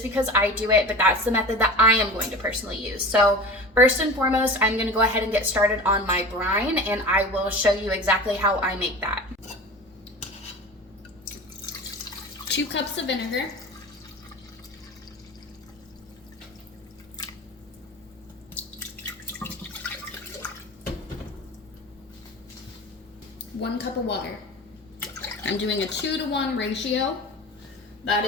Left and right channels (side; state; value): both; normal; correlation 0.35